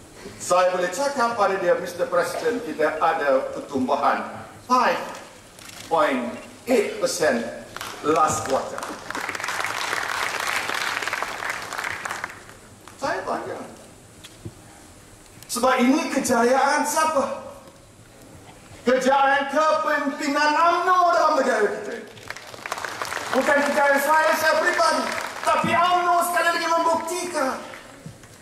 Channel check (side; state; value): both; identical; correlation 1.00